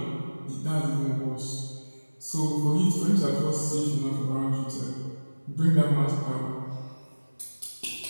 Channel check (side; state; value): both; inverted; correlation -1.00